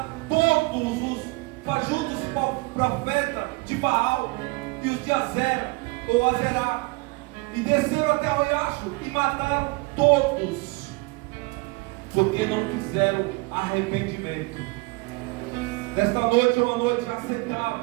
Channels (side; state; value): left; quieter; 25.6 dB